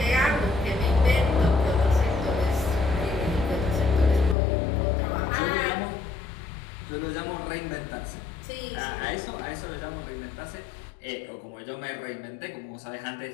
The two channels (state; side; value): drops out; right; at 4.4 s